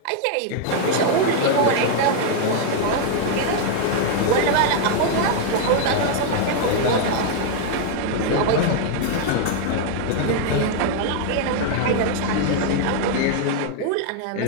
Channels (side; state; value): both; different; correlation 0.00